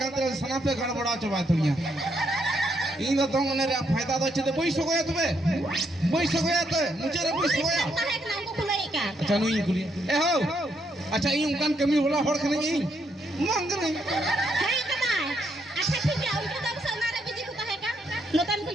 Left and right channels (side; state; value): both; normal; correlation 0.76